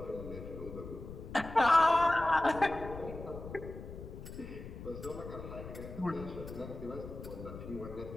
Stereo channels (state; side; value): noise; left; rumble, 11 dB below the sound